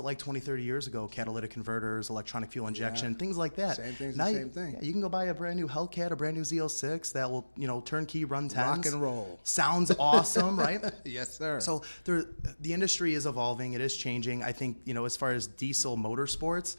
like 20, 30 years ago? Catalytic converters, electronic fuel injection, things like that. Same thing's now the same thing. Yeah, you can go buy a brand new Hellcat, a brand new Z06 that will, you know, turnkey run 10s. Rock and roll. Sounds awesome, right? Yes, sir. So the industry is evolving. It is changing. I think, you know, as far as diesel motorsports,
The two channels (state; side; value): inverted; both; correlation -1.00